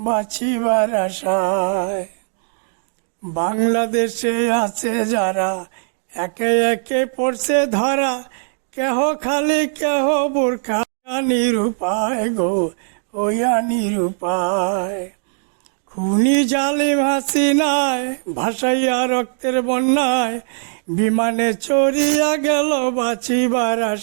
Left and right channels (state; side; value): silent; left; digital silence